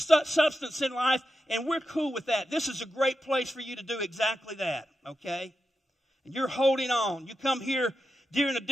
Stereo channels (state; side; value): normal; both; correlation 0.89